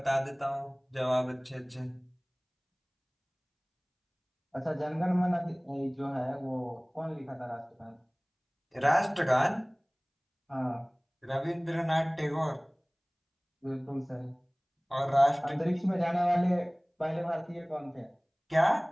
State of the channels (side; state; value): both; identical; correlation 1.00